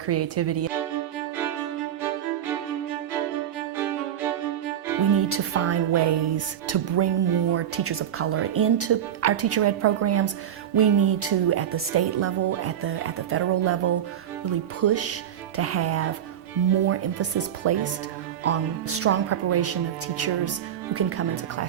We need to find ways to bring more teachers of color into our teacher ed programs. We need to, at the state level, at the federal level, really push to have more emphasis placed on strong preparation of teachers who can come into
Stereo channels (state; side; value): quieter; left; 10.1 dB